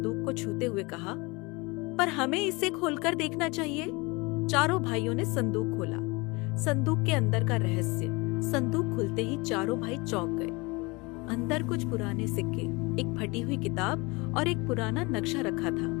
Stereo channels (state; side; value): quieter; right; 26.0 dB